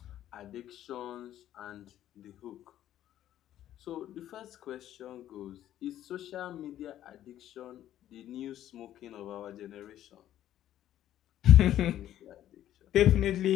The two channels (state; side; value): quieter; right; 12.2 dB